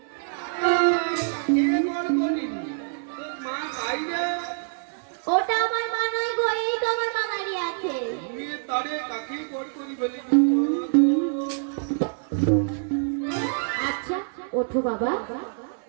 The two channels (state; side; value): silent; left; 61 dB below the other